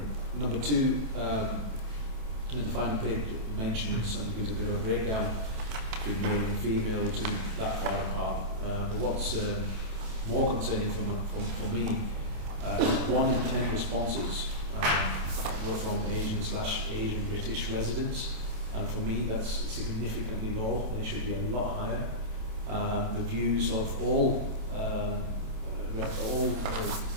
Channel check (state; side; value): late; left; 27 ms